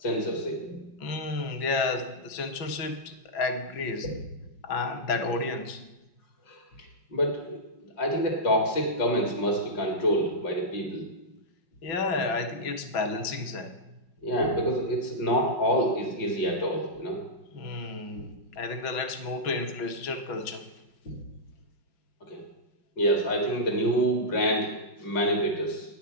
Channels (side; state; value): right; late; 5.5 ms